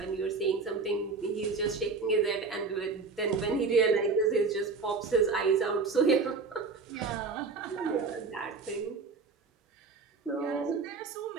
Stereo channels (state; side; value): quieter; left; 4.5 dB